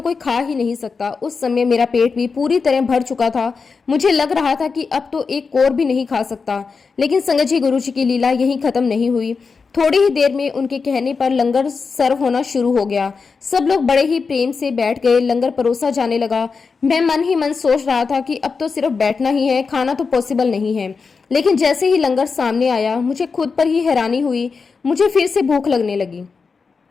कोई खा ही नहीं सकता। उस समय मेरा पेट भी पूरी तरह भर चुका था। मुझे लग रहा था कि अब तो एक कोर भी नहीं खा सकता। लेकिन संगत जी, गुरुजी की लीला यहीं खत्म नहीं हुई। थोड़ी ही देर में उनके कहने पर लंगर सर्व होना शुरू हो गया। सब लोग बड़े ही प्रेम से बैठ गए। लंगर परोसा जाने लगा। मैं मन ही मन सोच रहा था कि अब तो सिर्फ बैठना ही है, खाना तो पॉसिबल नहीं है। लेकिन जैसे ही लंगर सामने आया मुझे खुद पर ही हैरानी हुई। मुझे फिर से भूख लगने लगी।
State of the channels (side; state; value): right; quieter; 4.9 dB